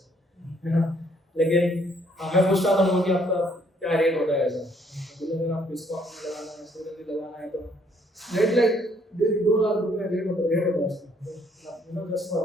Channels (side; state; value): both; normal; correlation 0.66